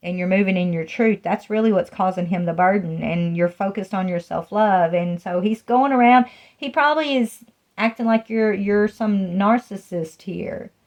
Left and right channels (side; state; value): both; identical; correlation 1.00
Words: And you're moving in your truth. That's really what's causing him the burden. And you're focused on your self-love. And so he's going around. He probably is acting like you're some narcissist here.